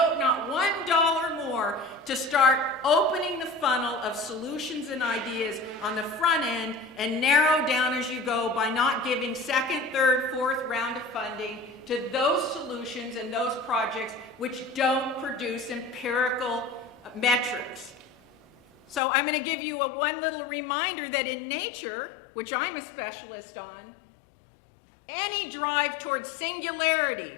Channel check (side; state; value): right; drops out; at 19.0 s